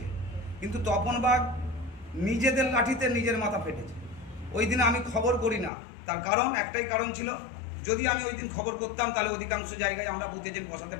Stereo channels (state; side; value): drops out; right; at 5.7 s